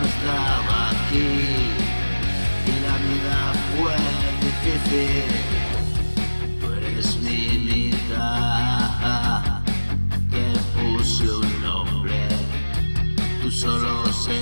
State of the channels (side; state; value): both; inverted; correlation -1.00